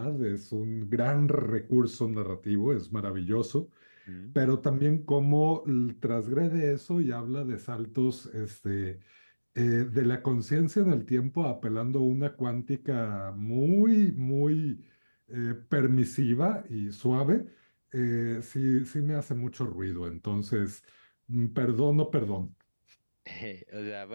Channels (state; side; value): inverted; both; correlation -1.00